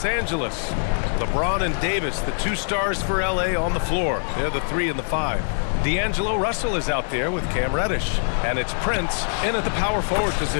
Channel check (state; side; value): silent; right; digital silence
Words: Angeles, LeBron and Davis, the 2 stars for LA on the floor. They're the 3 and the 5. D'Angelo Russell is out there with Cam Reddish. And it's Prince in at the power forward